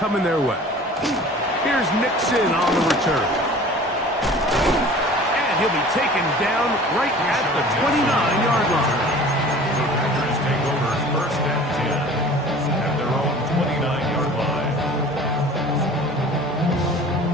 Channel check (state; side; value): normal; both; correlation 0.44